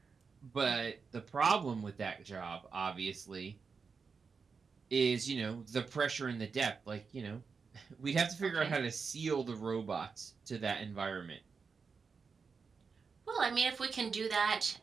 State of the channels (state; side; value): quieter; left; 5.3 dB